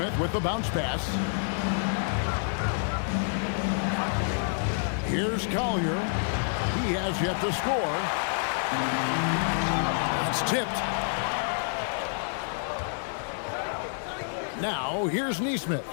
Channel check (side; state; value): right; silent; digital silence